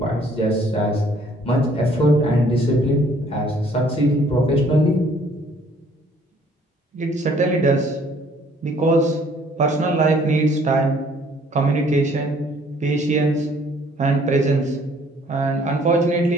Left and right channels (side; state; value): both; normal; correlation 0.59